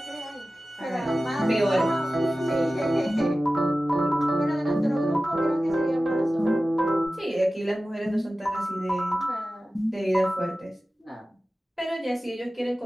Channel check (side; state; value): both; normal; correlation 0.96